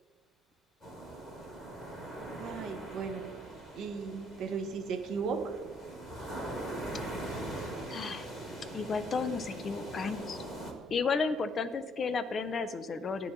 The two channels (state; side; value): normal; both; correlation 0.67